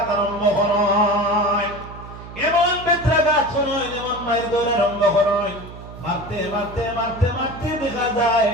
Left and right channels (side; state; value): right; noise; hum, 14 dB below the sound